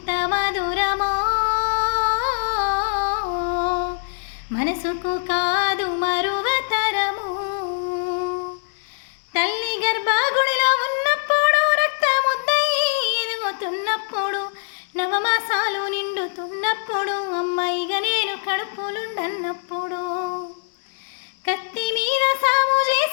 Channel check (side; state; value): right; silent; 64 dB below the other